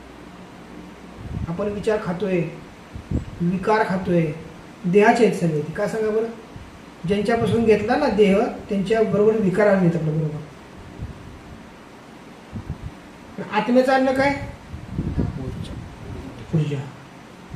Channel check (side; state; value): both; identical; correlation 1.00